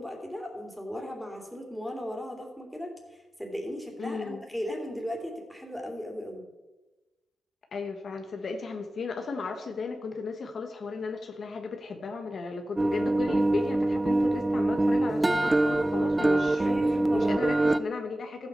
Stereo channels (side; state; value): both; normal; correlation 0.95